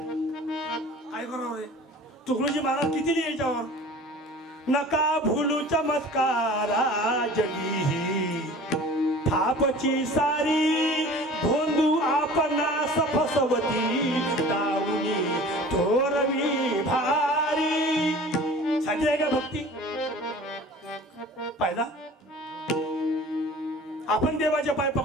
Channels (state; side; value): normal; both; correlation 0.43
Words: काय करावं रे. तुकडोजी महाराज किती लिहायच्यावर. नका भूलू चमत्कारा जगी थापची सारी भोंदू आपणास फसवती दाऊनी थोरवी भारी. साधी आहे का भक्ती? पाहिला आपण देवाचे पाय